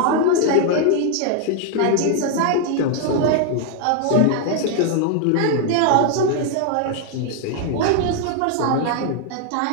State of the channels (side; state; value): both; different; correlation 0.00